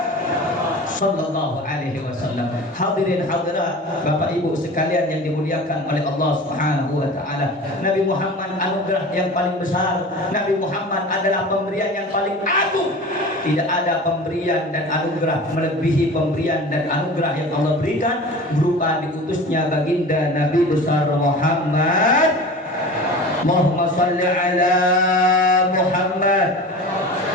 Sallallahu Alaihi Wasallam. Hadirin hadirat, Bapak Ibu sekalian yang dimuliakan oleh Allah Subhanahu Wa Taala, Nabi Muhammad anugerah yang paling besar. Nabi Muhammad adalah pemberian yang paling agung. Tidak ada pemberian dan anugerah melebihi pemberian dan anugerah yang Allah berikan berupa diutusnya baginda Nabi besar Muhammad. Allahumma salli ala Muhammad.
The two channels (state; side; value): normal; both; correlation 0.36